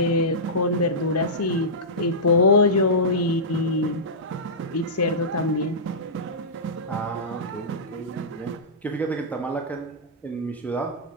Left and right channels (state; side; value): normal; both; correlation -0.15